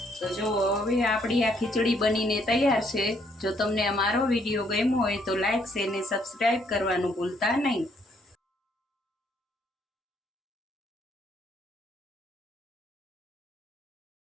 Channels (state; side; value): normal; both; correlation 0.69